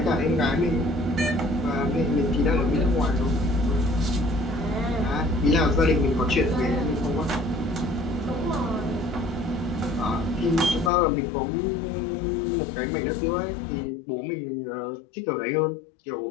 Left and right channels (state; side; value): drops out; right; at 10.9 s